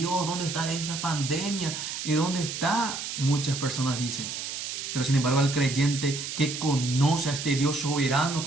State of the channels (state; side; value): noise; right; hiss, 6 dB below the sound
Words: ¿Dónde está esta pandemia? ¿Y dónde está? Muchas personas dicen. Pero sin embargo, al creyente que conoce a este Dios soberano,